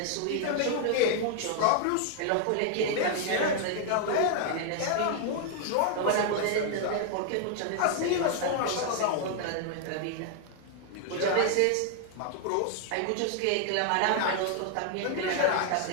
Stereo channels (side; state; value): both; different; correlation 0.00